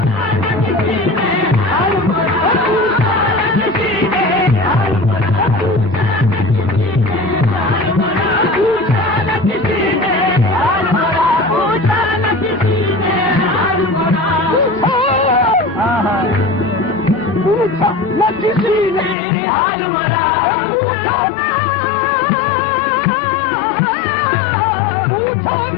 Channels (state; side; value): drops out; right; at 19.2 s